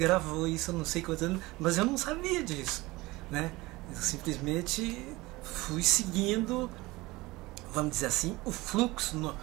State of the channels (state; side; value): quieter; left; 20.9 dB